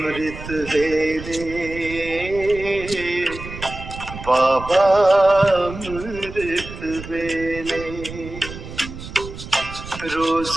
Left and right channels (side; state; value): right; noise; rumble, 12 dB below the sound